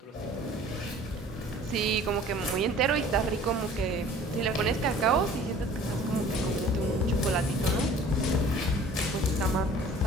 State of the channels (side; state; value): both; normal; correlation 0.49